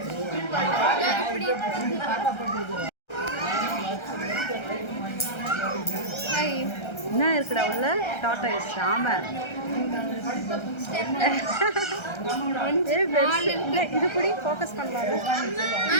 என்ன இருக்குடா உள்ள? டாட்டா இஸ் ஆமா. இது கூட ஃபோக்கஸ் பண்ணலாம்.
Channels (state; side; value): late; right; 1.3 ms